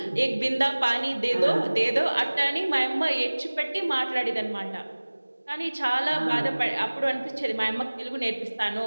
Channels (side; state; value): both; inverted; correlation -1.00